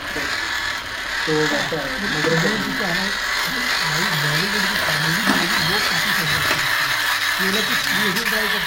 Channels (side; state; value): both; identical; correlation 1.00